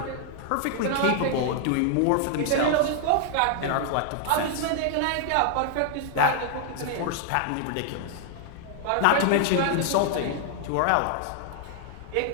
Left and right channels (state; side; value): different; both; correlation 0.00